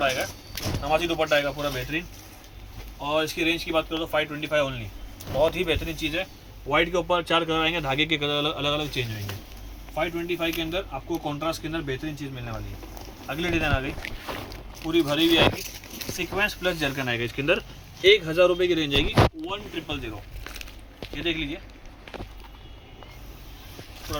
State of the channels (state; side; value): identical; both; correlation 1.00